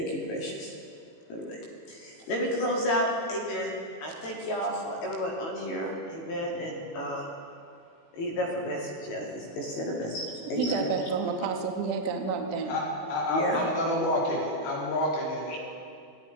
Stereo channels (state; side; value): late; right; 18 ms